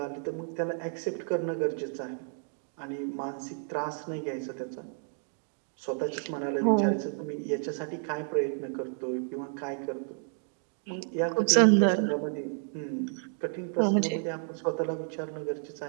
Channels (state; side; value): silent; left; 57 dB below the other